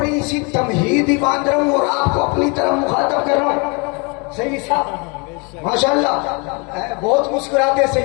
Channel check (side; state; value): right; quieter; 31.9 dB